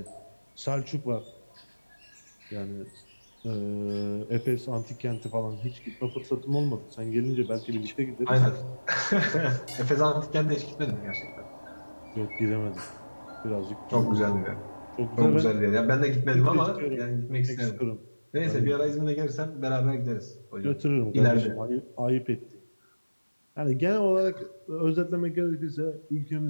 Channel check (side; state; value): both; inverted; correlation -1.00